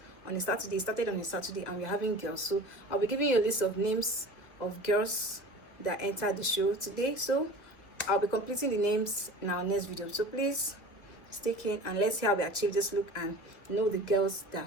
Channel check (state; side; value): late; right; 2.0 ms